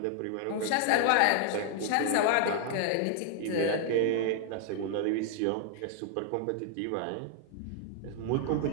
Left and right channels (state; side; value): different; both; correlation 0.00